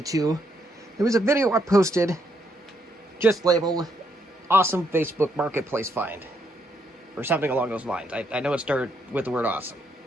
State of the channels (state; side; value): normal; both; correlation 0.75